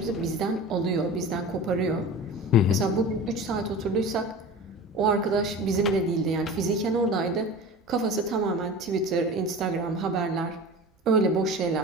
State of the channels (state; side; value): normal; both; correlation 0.35